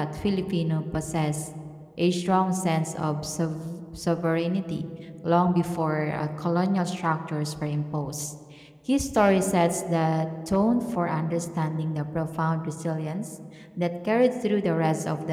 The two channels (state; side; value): identical; both; correlation 1.00